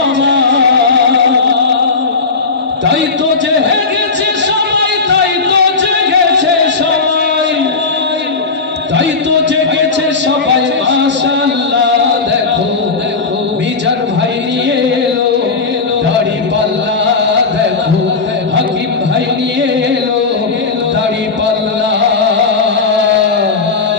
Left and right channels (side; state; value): right; quieter; 4.3 dB